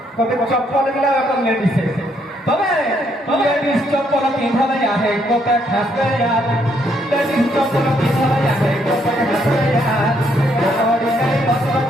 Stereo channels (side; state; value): both; normal; correlation 0.72